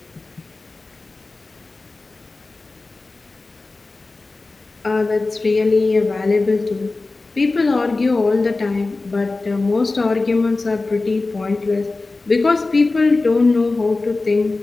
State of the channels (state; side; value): quieter; right; 3.4 dB